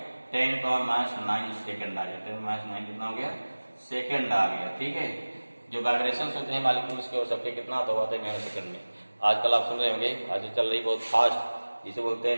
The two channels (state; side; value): inverted; both; correlation -1.00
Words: 10 पावर -9 सेकंड आ गया, 10 -9 कितना हो गया सेकंड आ गया। ठीक है, जो वाइब्रेशन होते हैं मॉलिक्यूल्स के और सबके कितना होता है नैनो सेकंड में। आजकल आप सुन रहे होंगे, आज चल रही बहुत फास्ट, जिसे बोलते